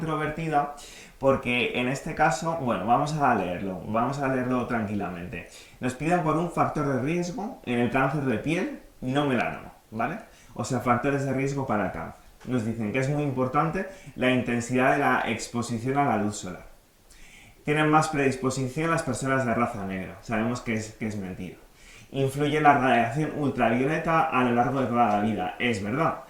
porque en este caso, bueno, vamos a leerlo tranquilamente. Nos piden por un factor de riesgo en el cáncer de piel no melanoma, ¿vale? O sea, factores de riesgo para el cáncer. Nos dicen que es muy importante la intensidad de la exposición a la luz solar. Tienen más predisposición las personas de raza negra. Sabemos que es mentira. Influye la radiación ultravioleta a lo largo de toda la vida. Es verdad.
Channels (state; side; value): identical; both; correlation 1.00